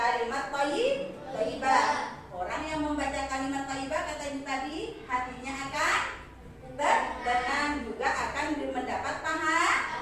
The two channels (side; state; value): both; identical; correlation 1.00